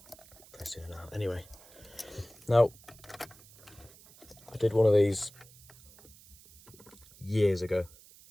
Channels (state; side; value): noise; right; hiss, 23 dB below the sound